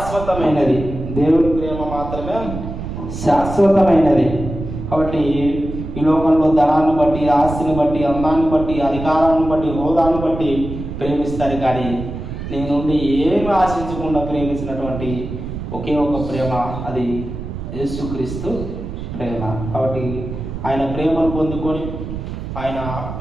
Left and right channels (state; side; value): noise; right; rumble, 8 dB below the sound